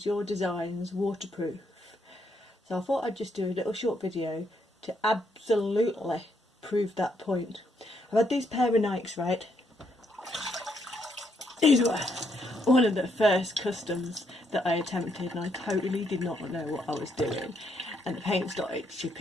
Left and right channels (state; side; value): normal; both; correlation 0.75